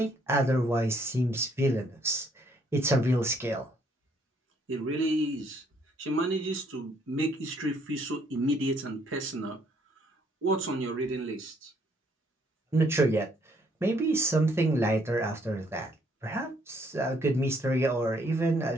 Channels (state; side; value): normal; both; correlation 0.67